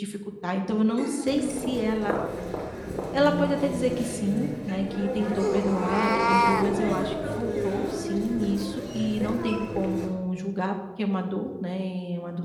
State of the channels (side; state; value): both; identical; correlation 1.00